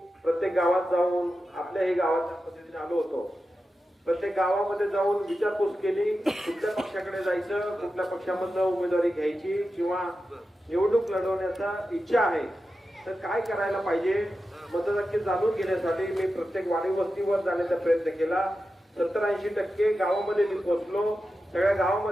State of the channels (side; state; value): both; normal; correlation 0.91